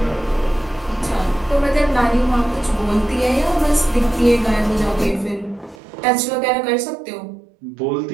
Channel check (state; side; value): drops out; left; at 5.8 s